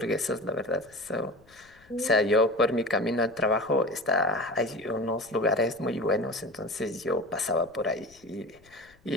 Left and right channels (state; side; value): noise; left; rumble, 29 dB below the sound